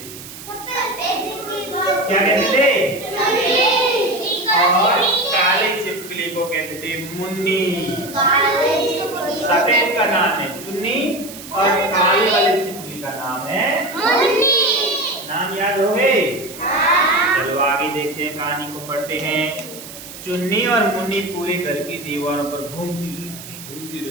क्या कहते थे? और काले छिपकली को कहते थे मुन्नी। सफेद का नाम है चुन्नी और काले वाले छिपकली का नाम है मुन्नी। नाम याद हो गए? चलो आगे देखते हैं, कहानी को पढ़ते हैं। चुन्नी और मुन्नी पूरे घर की दीवारों पर घूमती रहती थी, घूमती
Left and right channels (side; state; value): right; noise; hiss, 14 dB below the sound